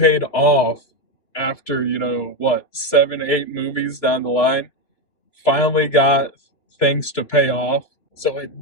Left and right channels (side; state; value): right; late; 2.9 ms